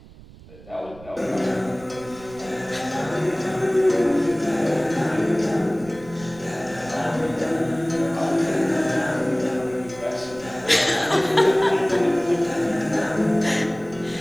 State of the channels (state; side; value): noise; right; rumble, 20 dB below the sound